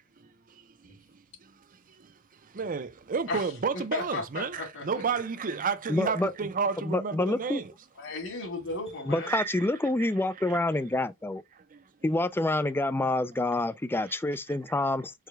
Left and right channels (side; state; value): both; normal; correlation 0.49